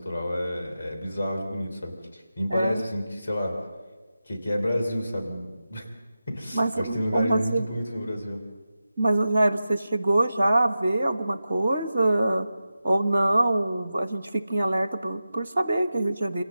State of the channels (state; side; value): inverted; both; correlation -0.92